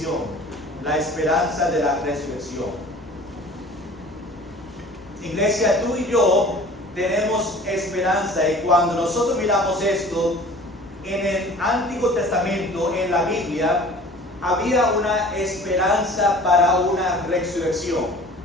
La esperanza de la resurrección. Iglesia, tú y yo tenemos esperanza, y cuando nosotros miramos esto, en el Antiguo Testamento, en la Biblia, había una esperanza para una resurrección.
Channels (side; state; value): both; normal; correlation 0.45